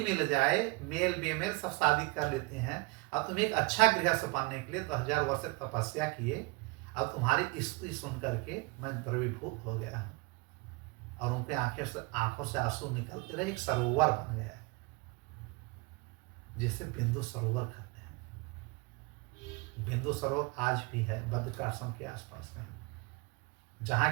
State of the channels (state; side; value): quieter; left; 26.7 dB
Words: मिल जाए, मेल बेमेल सब शादी कर लेते हैं। अब तुम एक अच्छा गृहस्थ बनने के लिए 10,000 वर्ष तपस्या किए, अब तुम्हारी स्तुति सुन करके मैं द्रवीभूत हो गया हूँ। और उनके आंखों से आंसू निकलते रहे, एक सरोवर बन गया जिसे बिंदु सरोवर कहते हैं। बिंदु सरोवर आज भी है बद्रिकाश्रम के आसपास कहीं,